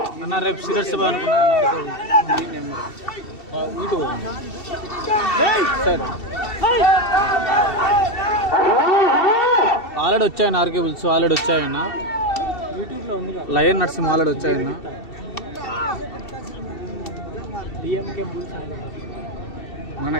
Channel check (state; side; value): late; right; 2.7 ms